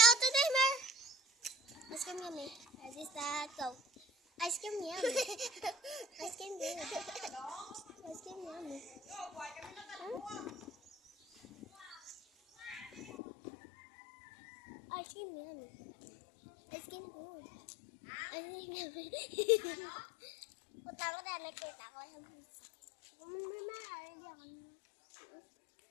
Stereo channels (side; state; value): right; drops out; at 13.1 s